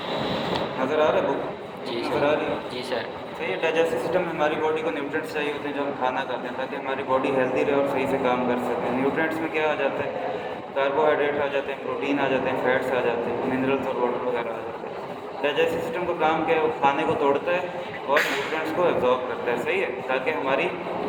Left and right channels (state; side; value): identical; both; correlation 1.00